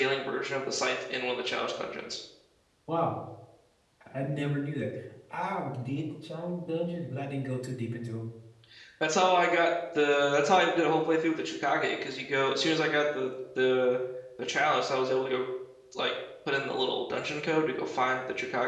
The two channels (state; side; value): identical; both; correlation 1.00